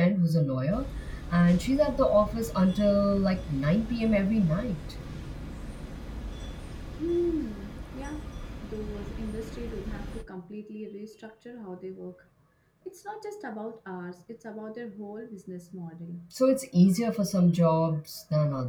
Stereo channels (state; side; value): identical; both; correlation 1.00